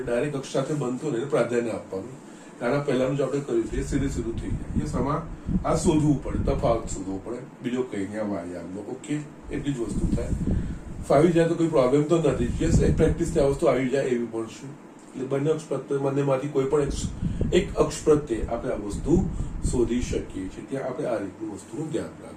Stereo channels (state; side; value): identical; both; correlation 1.00